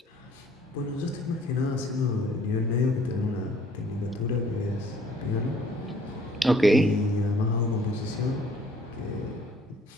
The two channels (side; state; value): both; normal; correlation 0.59